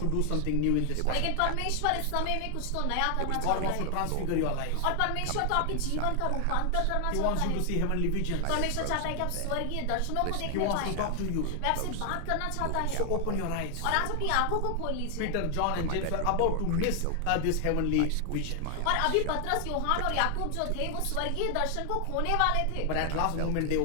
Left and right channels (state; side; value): different; both; correlation 0.00